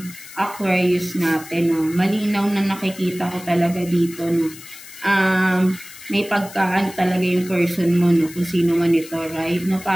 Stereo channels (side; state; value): left; noise; hiss, 17 dB below the sound